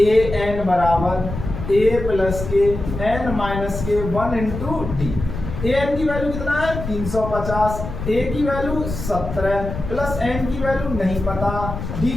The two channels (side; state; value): left; noise; rumble, 7 dB below the sound